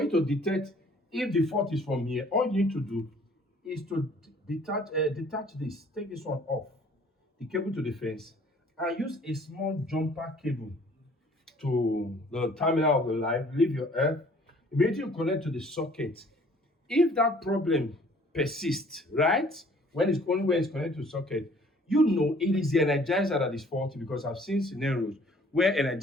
you to detect if the fault is from here, all you need to do is to detach this, take this one off, the cable to the fence, and use a small jumper cable to the terminal of the light, leave your earth, immediately you connect to the socket. If that problem persists, right, when it's connected to the socket, you know it is the energizer that is faulty, because I've seen scenarios where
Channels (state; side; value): normal; both; correlation 0.56